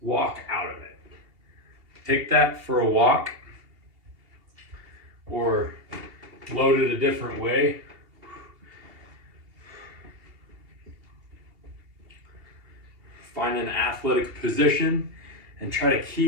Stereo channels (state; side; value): late; left; 2.8 ms